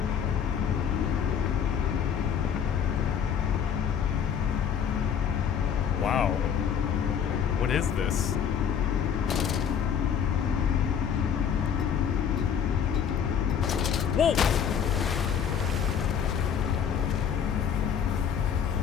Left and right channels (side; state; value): right; quieter; 7.9 dB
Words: Wow. What is this? Whoa!